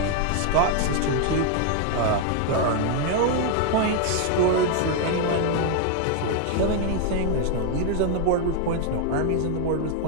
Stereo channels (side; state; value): both; different; correlation 0.00